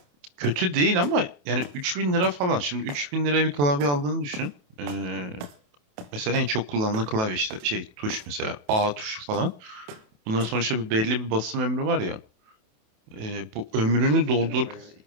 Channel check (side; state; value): left; late; 28 ms